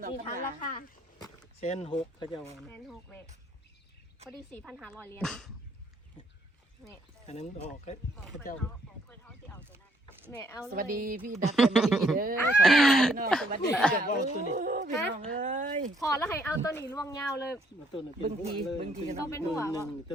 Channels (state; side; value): normal; both; correlation 0.68